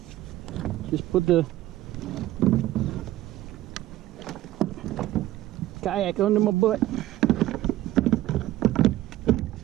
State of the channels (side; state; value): left; quieter; 15.2 dB